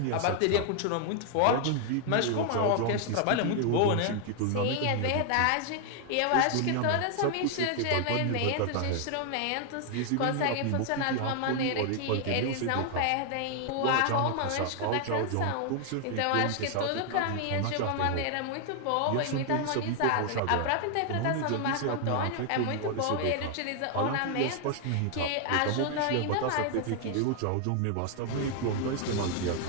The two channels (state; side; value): different; both; correlation 0.00